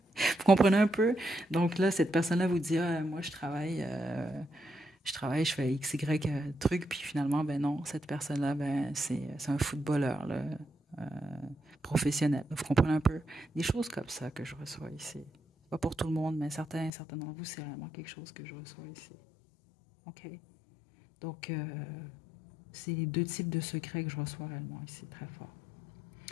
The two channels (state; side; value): drops out; right; at 16.9 s